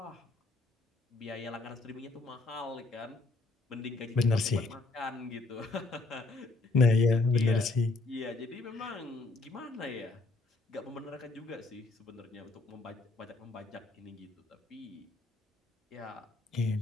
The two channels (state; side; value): quieter; right; 3.4 dB